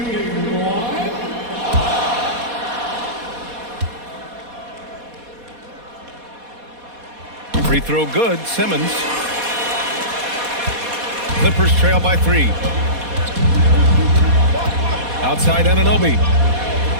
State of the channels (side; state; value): left; late; 4.2 ms